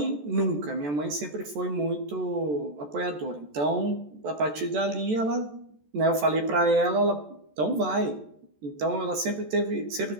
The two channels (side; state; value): left; late; 14 ms